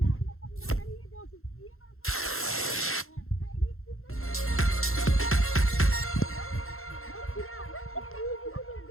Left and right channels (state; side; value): late; right; 0.62 ms